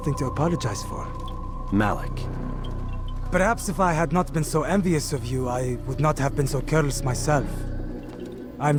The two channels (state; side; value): identical; both; correlation 1.00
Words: to apologize for. Malik. Perhaps if I had not been so envious of you, I would not have been so careless myself.